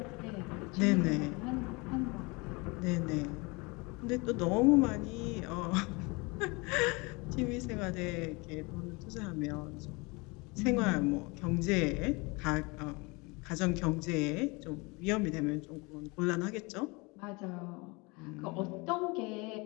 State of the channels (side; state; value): right; quieter; 27.2 dB